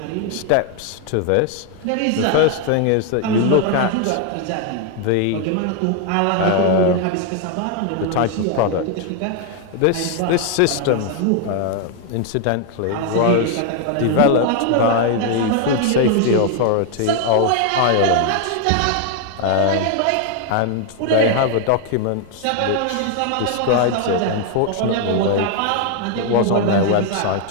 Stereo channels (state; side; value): different; both; correlation 0.00